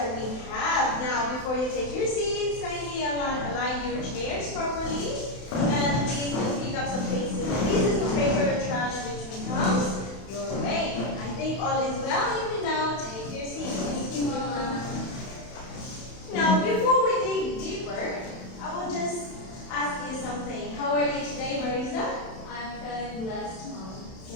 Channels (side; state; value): right; late; 31 ms